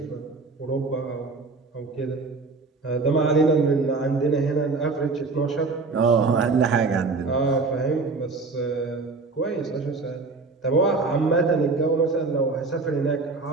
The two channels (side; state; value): left; quieter; 3.9 dB